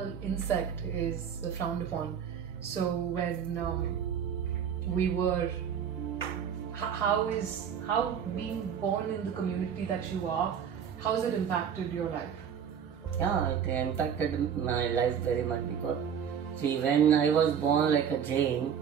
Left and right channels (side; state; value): left; quieter; 8.0 dB